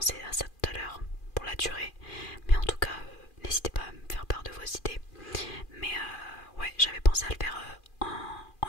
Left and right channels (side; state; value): right; late; 2.4 ms